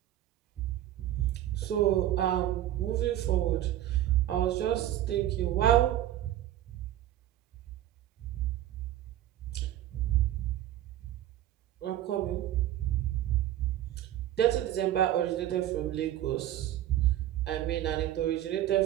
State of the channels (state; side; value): quieter; left; 12.9 dB